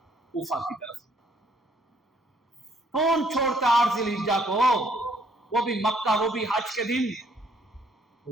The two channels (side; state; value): both; normal; correlation 0.65